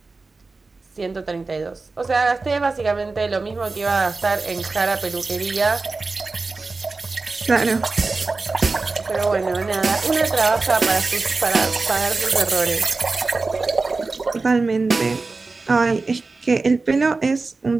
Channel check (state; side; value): quieter; left; 3.8 dB